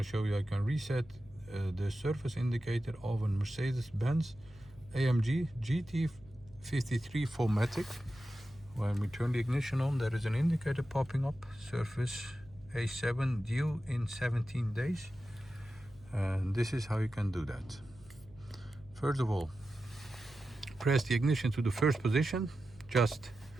show you how you can reset the surface indicator of a Mercedes-Benz AMG GT53 4MATIC. When we turn the ignition on, there is an indicator popping up, surface A7 due in 17 days. And this is how you can do that. First of all, press the ignition to the first position, just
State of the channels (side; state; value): right; noise; hum, 24 dB below the sound